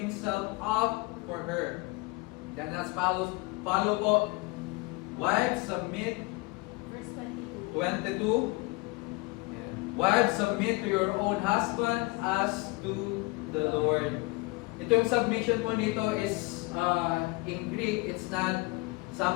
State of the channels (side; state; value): right; quieter; 24.8 dB